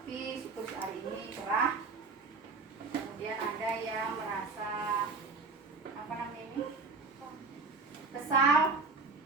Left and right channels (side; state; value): left; quieter; 4.2 dB